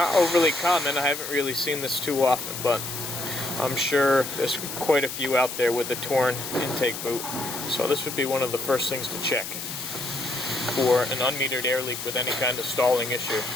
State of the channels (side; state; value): left; noise; hiss, 7 dB below the sound